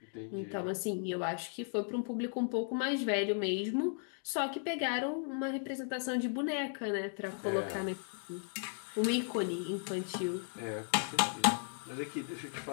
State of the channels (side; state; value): right; silent; 54 dB below the other